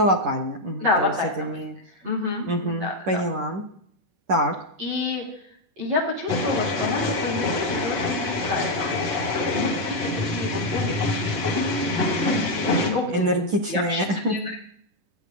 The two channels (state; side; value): late; left; 10 ms